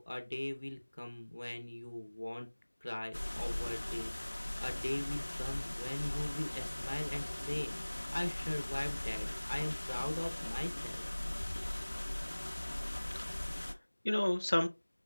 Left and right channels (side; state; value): both; inverted; correlation -1.00